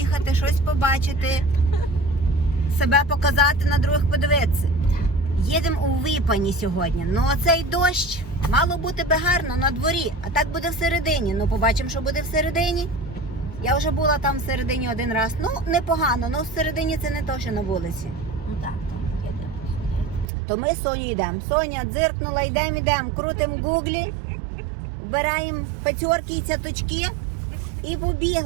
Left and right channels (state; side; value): drops out; left; at 20.2 s